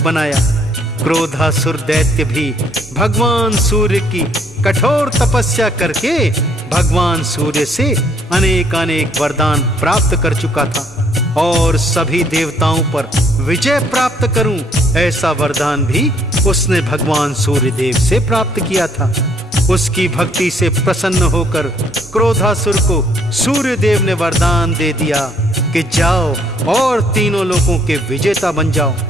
क्रोधासुर दैत्य भी भगवान सूर्य की कठोर तपस्या करके भगवान सूर्य से अनेक वरदान प्राप्त कर चुका था और सभी देवताओं पर विजय प्राप्त करूं, ऐसा वरदान भी उसने भगवान सूर्य देव से प्राप्त किया था। उसकी भक्ति से प्रसन्न होकर क्रोधासुर को सूर्य देव ने वरदान दे दिया कि जाओ और तीनों लोकों के विजेता बन जाओ।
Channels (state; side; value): normal; both; correlation 0.66